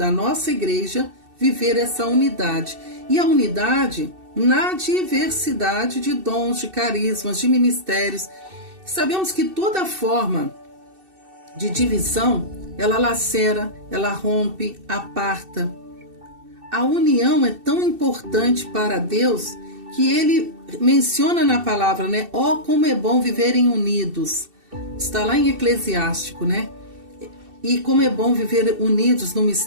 nossa Igreja viver essa unidade. E a unidade na diversidade de dons, de carismas, de ministérios. Sabemos que toda forma de divisão, ela lacera, ela rompe, aparta. A união é tão importante para Deus que Ele menciona na palavra, né? Ó, como é bom viverem unidos. Está lá em Eclesiástico, né? E como é bom viver unidos no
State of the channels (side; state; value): left; late; 2.7 ms